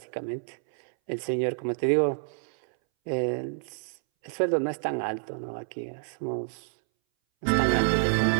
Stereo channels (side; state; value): left; silent; 59 dB below the other